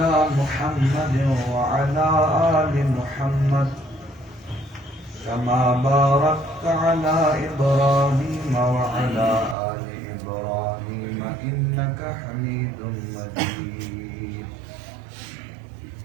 محمد وعلى آل محمد كما باركت على إبراهيم وعلى آل إبراهيم إنك حميد مجيد.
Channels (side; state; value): left; drops out; at 9.6 s